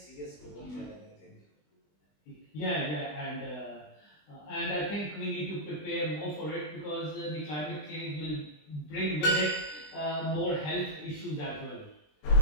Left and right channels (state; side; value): late; right; 20 ms